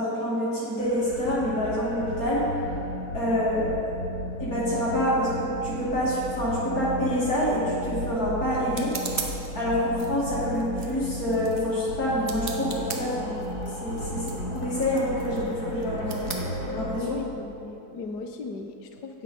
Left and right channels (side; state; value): right; late; 4.0 ms